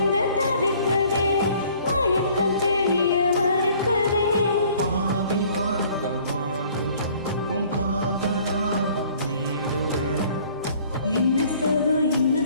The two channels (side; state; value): both; inverted; correlation -0.56